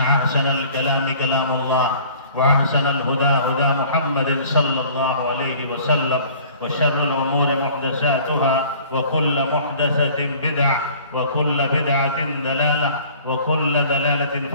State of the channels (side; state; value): both; inverted; correlation -0.50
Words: الكلام كلام الله وأحسن الهدى هدى محمد صلى الله عليه وسلم وشر الأمور محدثاتها وكل محدثة بدعة وكل بدعة ضلالة وكل ضلالة